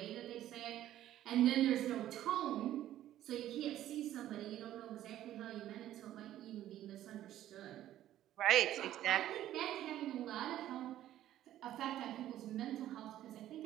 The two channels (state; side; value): quieter; left; 12.8 dB